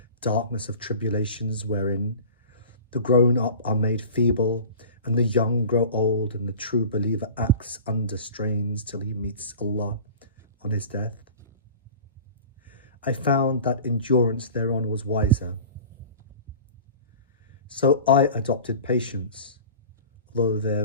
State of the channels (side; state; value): both; inverted; correlation -0.40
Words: darkness of tribulations wherein the grown-up are made feeble and the young grow old, and the true believer acts under strains till he meets Allah on his death. I found that endurance thereon was wiser. So I adopted patience, although